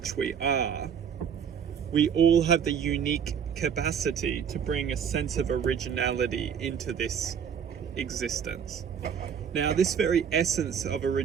we are, we all have the unique capacity to bring a sense of originality into this existence. Now, this very essence of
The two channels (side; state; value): left; quieter; 7.7 dB